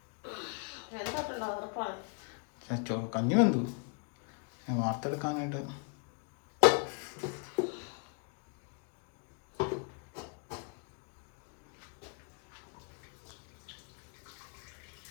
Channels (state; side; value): quieter; right; 39.9 dB